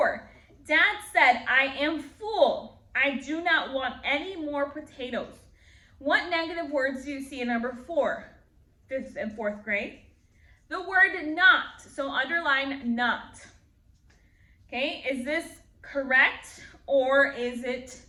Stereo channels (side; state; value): both; identical; correlation 1.00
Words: Dad said, I am full. I do not want any more potatoes. What negative words do you see in number 4, 5th and 4th grade? The word not, so underline not. Okay, is this correct or is it